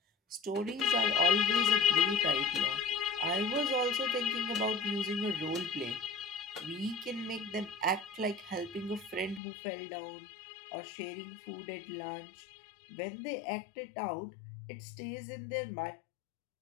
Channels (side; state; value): right; drops out; at 9.4 s